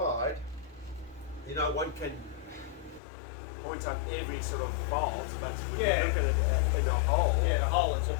you know, one can point out every sort of fault, but when Yeah. you look at it in a whole, Yeah, the whole, it's a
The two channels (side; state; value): right; drops out; at 3.0 s